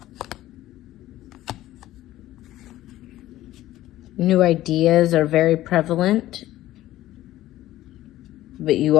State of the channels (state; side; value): quieter; right; 14.9 dB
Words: New ideas are very prevalent, but you